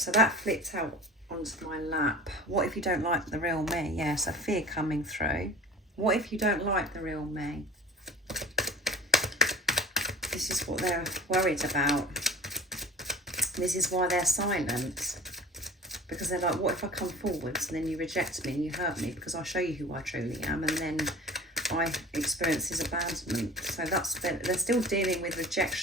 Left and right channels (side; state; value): both; normal; correlation 0.41